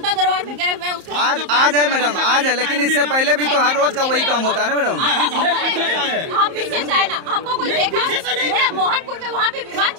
दरबार में गए हुए हैं। आज है मैडम, आज है, लेकिन इससे पहले भी तो हर रोज का वही काम होता है ना मैडम। हम पीछे से आए ना, हमको कोई देखा? मोहनपुर में वहाँ पे विवाद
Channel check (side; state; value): left; late; 31 ms